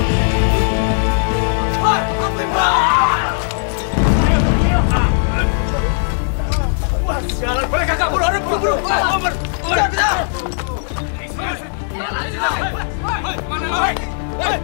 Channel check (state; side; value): silent; right; 68 dB below the other